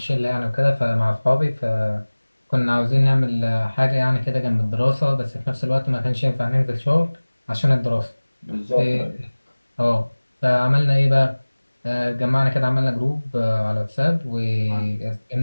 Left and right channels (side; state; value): both; inverted; correlation -1.00